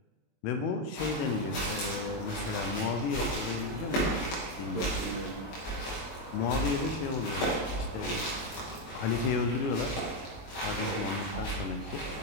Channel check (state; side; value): late; right; 22 ms